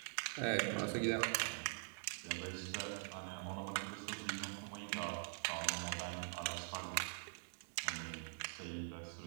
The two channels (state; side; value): silent; left; digital silence